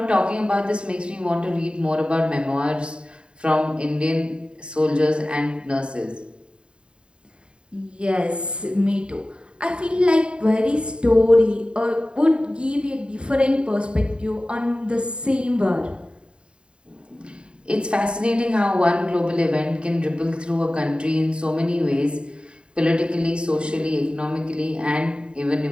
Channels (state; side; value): late; left; 0.052 ms